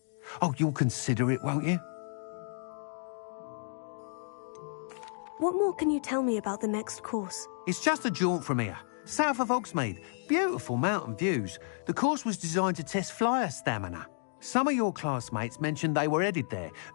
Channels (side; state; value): right; silent; digital silence